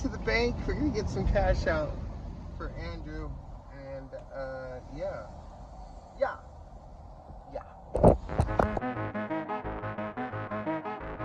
the bank, we're gonna get some cash out for Andrew, and yeah.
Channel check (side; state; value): both; identical; correlation 1.00